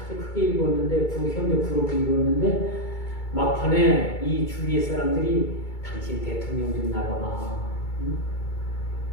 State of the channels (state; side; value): late; right; 2.3 ms